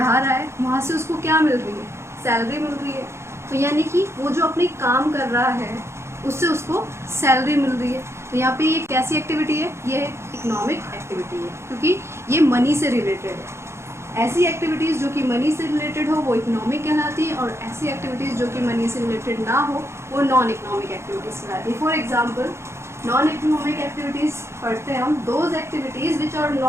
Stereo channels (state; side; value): late; left; 0.13 ms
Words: रहा है, वहाँ से उसको क्या मिल रही है, सैलरी मिल रही है। तो यानी कि वो जो अपनी काम कर रहा है उससे उसको सैलरी मिल रही है। तो यहाँ पे ये कैसी एक्टिविटी है, ये इकोनॉमिक एक्टिविटी है क्योंकि ये मनी से रिलेटेड है। ऐसी एक्टिविटीज़ जो कि मनी से रिलेटेड हो वो इकोनॉमिक कहलाती है और ऐसी एक्टिविटीज़ जो कि मनी से रिलेटेड ना हो वो नॉन इकोनॉमिक एक्टिविटीज़ कहलाती है। For example non economic activities पढ़ते हैं हम, those activities which are